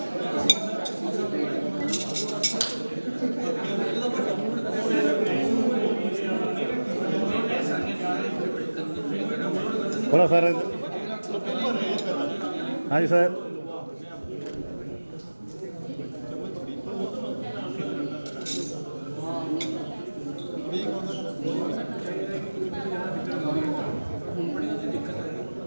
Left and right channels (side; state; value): both; inverted; correlation -1.00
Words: थोड़ा सर। हाँ जी सर।